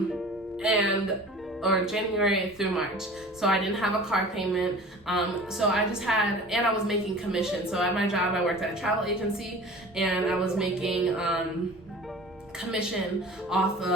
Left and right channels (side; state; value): both; normal; correlation 0.41